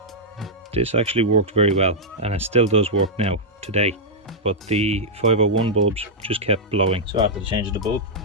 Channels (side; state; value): both; normal; correlation -0.07